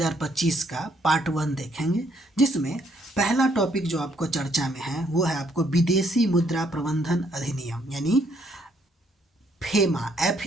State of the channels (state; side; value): normal; both; correlation 0.69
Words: का पार्ट 1 देखेंगे, जिसमें पहला टॉपिक जो आपको चर्चा में है वो है आपको विदेशी मुद्रा प्रबंधन अधिनियम यानी फेमा,